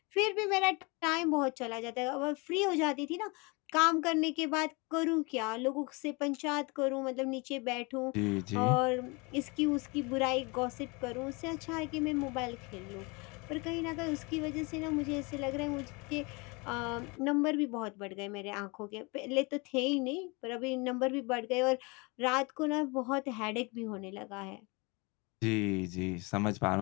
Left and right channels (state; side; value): quieter; right; 28.4 dB